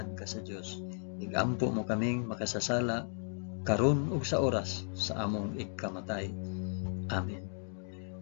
ka sa Dios. Igampo mo kaming makasasala karon ug sa oras sa among ikamatay. Amen.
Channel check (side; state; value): right; silent; 54 dB below the other